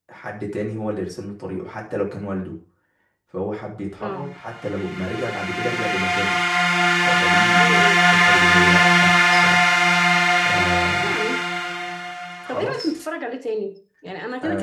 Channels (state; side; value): identical; both; correlation 1.00